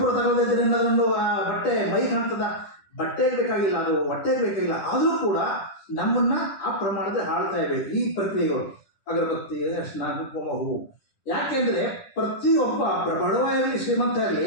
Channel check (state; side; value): late; right; 10 ms